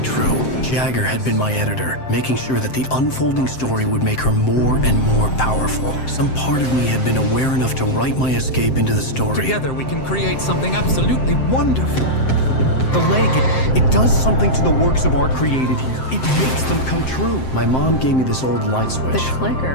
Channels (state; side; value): late; right; 7.7 ms